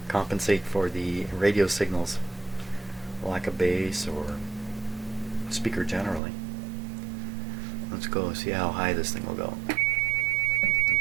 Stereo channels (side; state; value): left; drops out; at 6.2 s